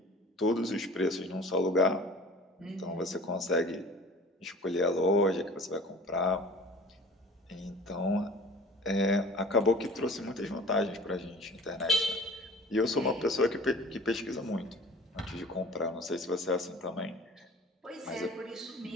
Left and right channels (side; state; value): both; normal; correlation 0.45